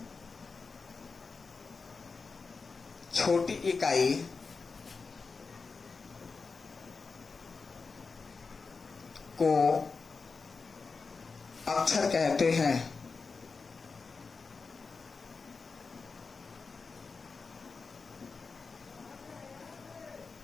छोटी इकाई को अक्षर कहते हैं।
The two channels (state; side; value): quieter; right; 4.6 dB